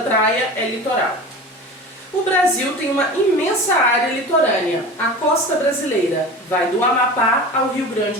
é litoral. O Brasil tem uma imensa área litorânea. A costa brasileira vai do Amapá ao Rio Grande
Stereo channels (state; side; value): normal; both; correlation 0.34